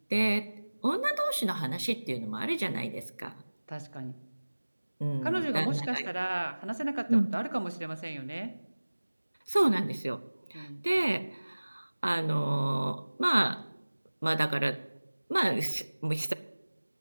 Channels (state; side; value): inverted; both; correlation -1.00